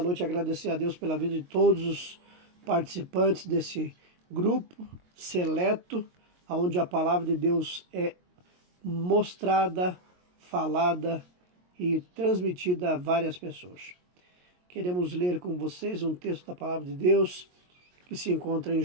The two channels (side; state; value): left; late; 22 ms